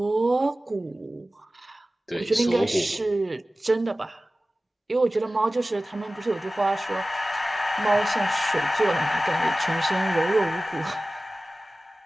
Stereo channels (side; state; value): both; normal; correlation 0.96